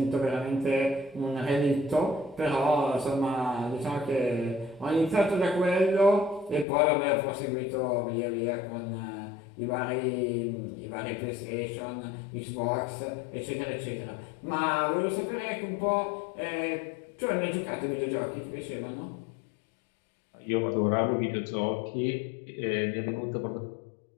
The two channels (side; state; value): right; drops out; at 6.7 s